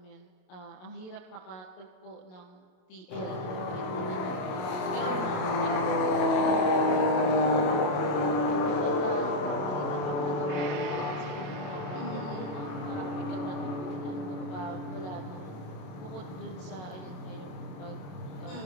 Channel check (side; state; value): right; late; 28 ms